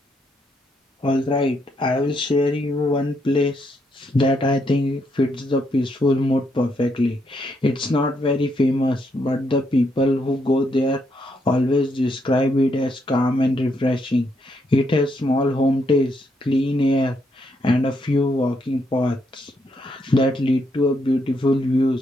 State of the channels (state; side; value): normal; both; correlation 0.77